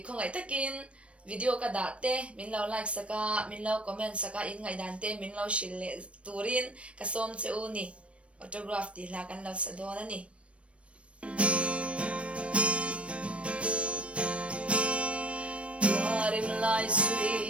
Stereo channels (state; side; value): late; left; 0.061 ms